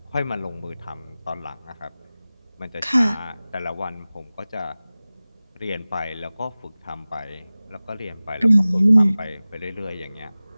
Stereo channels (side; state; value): both; inverted; correlation -0.98